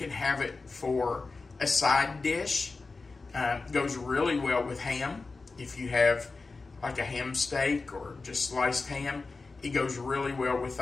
have it for a side dish. Goes really well with ham. If you have like a ham steak or just sliced ham, it goes really well with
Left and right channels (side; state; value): right; quieter; 3.9 dB